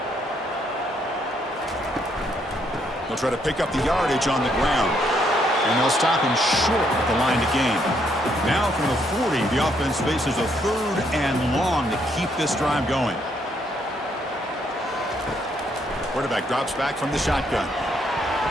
They'll try to pick up the yardage on the ground. And they'll stop him short at the line to gain. Now from the 40, the offense faces a 3rd and long to keep this drive going. Quarterback drops back from the shotgun.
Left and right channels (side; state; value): both; normal; correlation 0.72